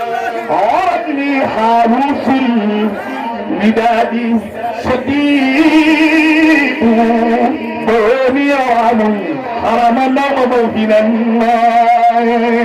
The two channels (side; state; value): both; identical; correlation 1.00